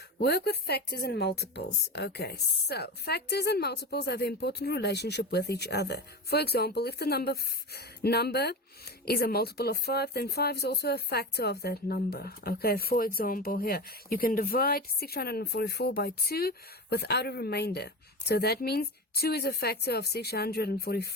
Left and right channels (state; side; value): normal; both; correlation 0.25